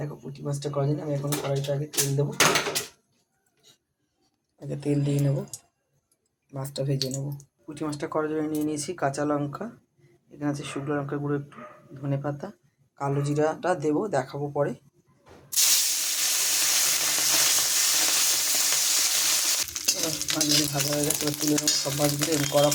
পুঁটি মাছটা করার জন্য আমি এখন কড়াইটা আগে তেল দেবো, আগে তেল দিয়ে নেবো, মাছটা ভেজে নেবো। পুঁটি মাছটা করার জন্য নিয়ে নিয়েছি কাঁচা লঙ্কা, এখানে আছে শুকনো লঙ্কার গুঁড়ো একটু, ধনে পাতা, কালো জিরাটা দেবো, দেখাবো পরে। মাছগুলি ভাজা হয়ে গেছে, এবার তুলে নেবো সব মাছগুলো, এবং কড়া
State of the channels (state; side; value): identical; both; correlation 1.00